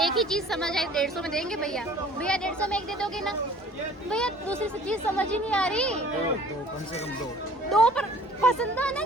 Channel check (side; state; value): both; normal; correlation 0.50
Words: एक ही चीज समझ आई। 150 में देंगे भैया? भैया 150 में एक दे दोगे ना? भैया दूसरी से चीज समझ ही नहीं आ रही। दो कम से कम दो पर पसंद